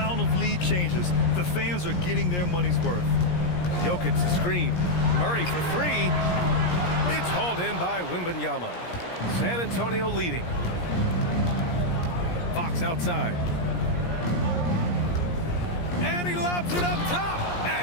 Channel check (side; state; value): right; late; 17 ms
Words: of lead changes. The fans are getting their money's worth. Jokic to screen. Murray for 3. It's hauled in by Wembanyama. San Antonio leading. Fox outside. And he lobs it up top.